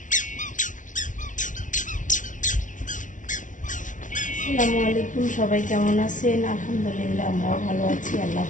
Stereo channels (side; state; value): right; late; 0.37 ms